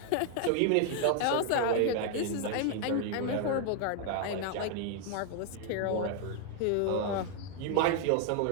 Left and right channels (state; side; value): different; both; correlation 0.00